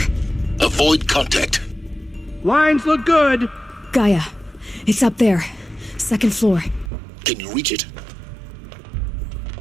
Avoid contact. Lines look good. Gaia. It's up there. Second floor. Can you reach it?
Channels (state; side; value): drops out; left; at 6.9 s